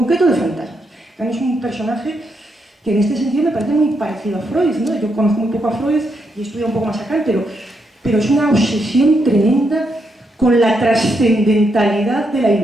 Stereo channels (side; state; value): both; normal; correlation 0.80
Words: de fantasmas. Kant es un personaje que en este sentido me parece muy parecido a Freud, ¿no? Yo conozco muy poco a Freud y he estudiado un poco más a Kant, pero pero es una obsesión tremenda con la trascendentalidad de la